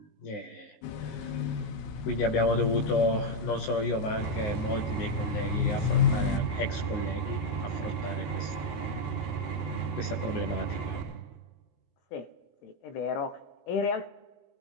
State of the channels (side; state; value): right; late; 19 ms